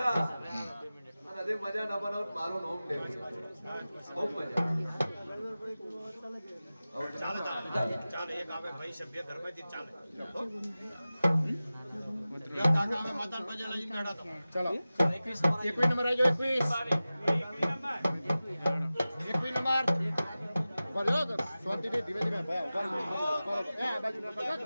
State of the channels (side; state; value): both; inverted; correlation -0.96